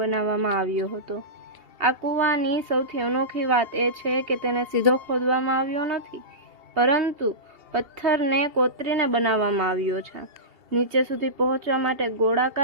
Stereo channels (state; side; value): late; left; 2.7 ms